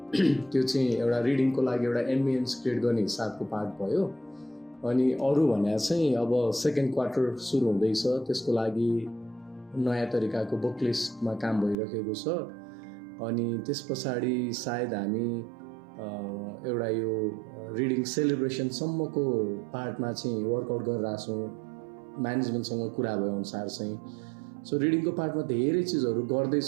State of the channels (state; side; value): drops out; left; at 11.8 s